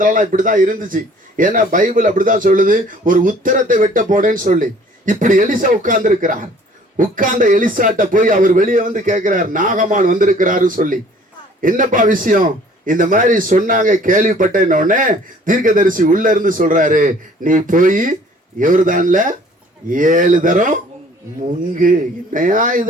இப்படிதான் இருந்துச்சு. ஏன்னா பைபிள் அப்படிதான் சொல்லுது, ஒரு உத்தரத்தை வெட்ட போனேன்னு சொல்லி. இப்படி எலிசா உட்கார்ந்து இருக்கிறார். உட்கார்ந்த எலிசாட்ட போய் அவர் வெளியே வந்து கேட்கிறார், நாகமான் வந்திருக்கிறாரு சொல்லி. என்னப்பா விஷயம்? இந்த மாதிரி சொன்னாங்க, கேள்விப்பட்டேன். உடனே தீர்க்கதரிசி உள்ள இருந்து சொல்றாரு, நீ போய் யோர்தான்ல 7 தரம் முங்கு. என்னையா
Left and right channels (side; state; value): both; normal; correlation 0.54